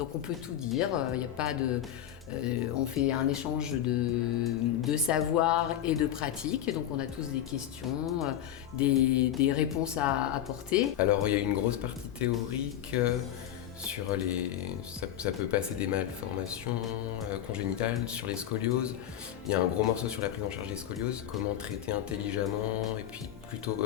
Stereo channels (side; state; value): right; quieter; 11.0 dB